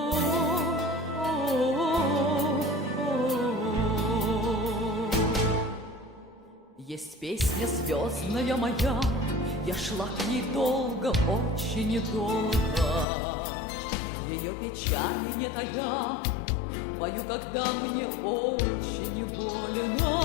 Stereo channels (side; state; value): right; drops out; at 13.1 s